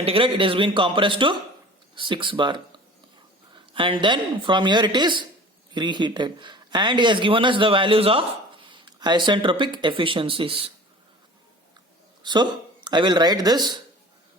it has been compressed to 6 bar. And then from here it is reheated. And he has given us the values of isentropic efficiencies. So I will write this.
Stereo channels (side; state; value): both; normal; correlation 0.42